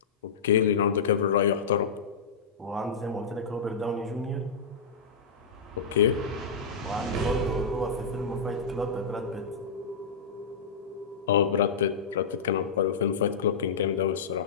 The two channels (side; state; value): right; quieter; 5.4 dB